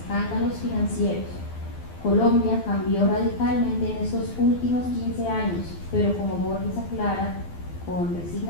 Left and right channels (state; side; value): late; right; 12 ms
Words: financieros. Colombia cambió radicalmente en estos últimos 15 años, pero como Borges aclara con